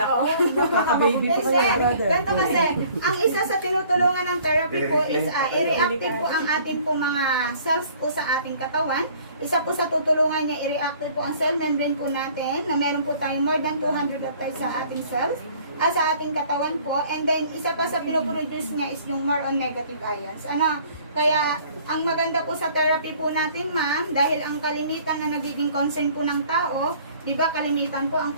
oh. Nakaka-baby pa kayo, brother. Ganito kasi, ang isa sa tinutulungan ng therapy po is i-reactive po ang ating po mga cells po sa ating katawan. Isa po sa tutulungan niya, i-reactive po ang cell membrane po natin na meron po tayong more than 200 of times sa ating cells. Sa ating katawan po. And then, isa pa sa pinoproduce niya is yung more on negative ions. Ano? Kaya, ang maganda po sa therapy po natin, ma'am, dahil ang kalimitan na nagiging concern po ng tao, di ba kalimitan po ang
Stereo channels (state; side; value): inverted; both; correlation -0.54